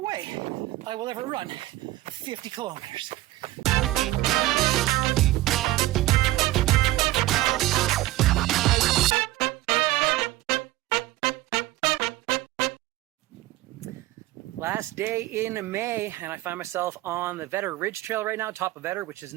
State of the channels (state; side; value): quieter; left; 17.1 dB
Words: way I will ever run 50 kilometers. Last day in May, and I find myself on the Vedder Ridge Trail right now, top of Vedder, which is